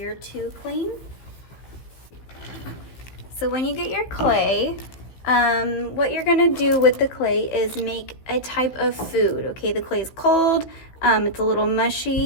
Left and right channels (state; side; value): late; right; 16 ms